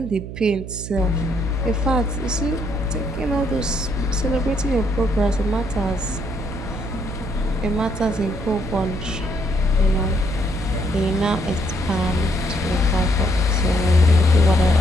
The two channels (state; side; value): noise; right; hum, 9 dB below the sound